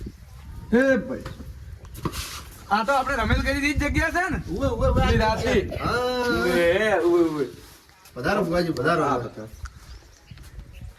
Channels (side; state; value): both; identical; correlation 1.00